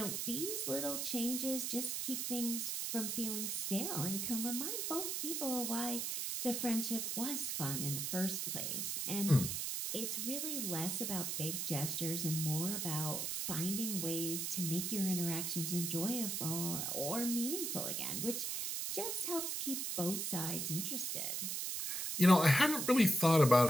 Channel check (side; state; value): right; noise; hiss, 1 dB below the sound